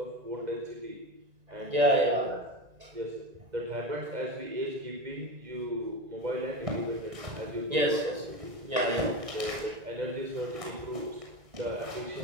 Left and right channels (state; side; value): late; left; 1.9 ms